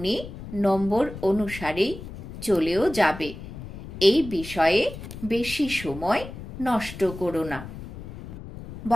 নম্বর অনুসারেই চলেও যাবে। এই বিষয়ে বেশি সময় নষ্ট করো না।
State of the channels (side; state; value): left; noise; rumble, 12 dB below the sound